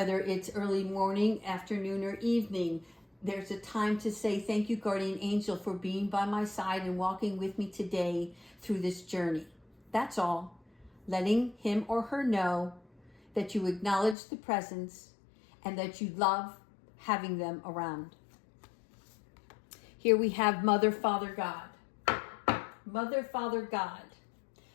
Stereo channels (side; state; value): right; drops out; at 14.2 s